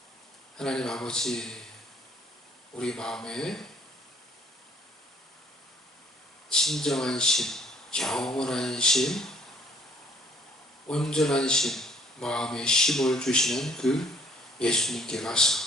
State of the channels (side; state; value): both; normal; correlation 0.61